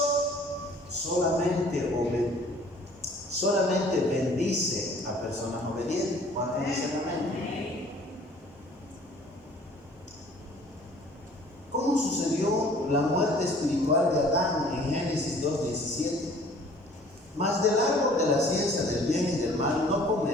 solamente bendice a personas obedientes. ¿Cuántos dicen amén? ¿Cómo sucedió la muerte espiritual de Adán en Génesis 2:17? Mas del árbol de la ciencia del bien y del mal no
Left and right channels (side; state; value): both; normal; correlation 0.53